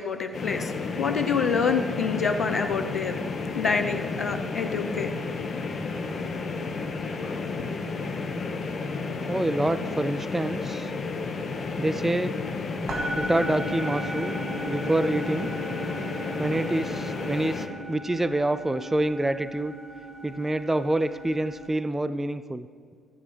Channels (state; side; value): normal; both; correlation 0.79